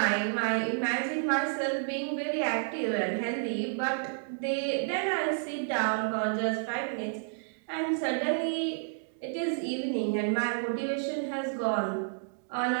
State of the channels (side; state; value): left; silent; digital silence